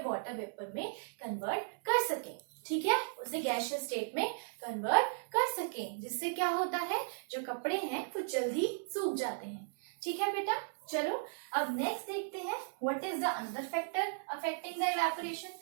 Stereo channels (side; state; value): left; silent; 54 dB below the other